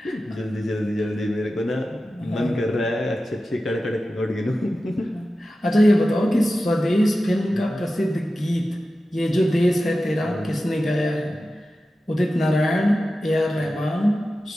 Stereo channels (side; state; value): both; normal; correlation 0.94